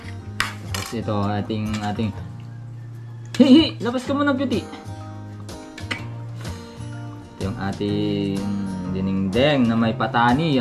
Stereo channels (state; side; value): identical; both; correlation 1.00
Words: Tapos ito, ating hihi! Labas ka muna, beauty! Ito yung ating dinengdeng na may patani.